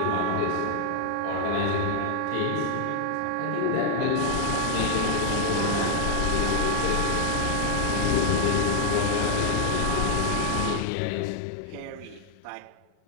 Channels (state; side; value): different; both; correlation 0.00